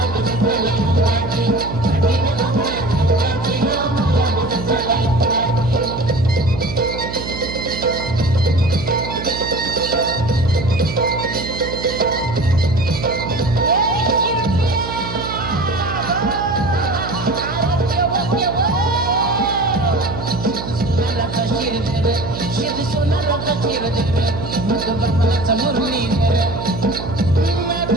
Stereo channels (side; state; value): right; noise; hum, 8 dB below the sound